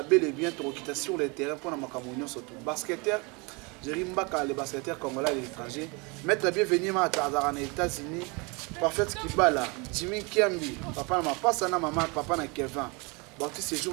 bel et bien tokita sur le terrain pour na makambo surtout basketteur. Jerimbaka le basketteur congolais à l'étranger. Maître bienvenue ma azara na États-Unis. Parfait Kibala, Jimmy Kiambi, papa na pasa na maman, papa na Kevin. Bati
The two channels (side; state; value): left; quieter; 29.2 dB